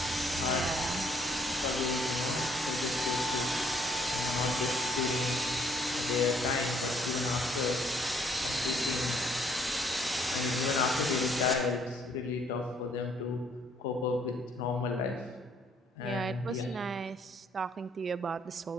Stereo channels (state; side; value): normal; both; correlation 0.65